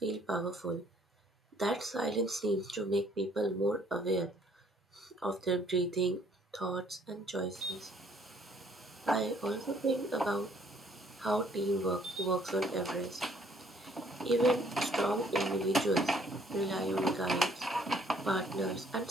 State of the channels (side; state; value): both; normal; correlation 0.63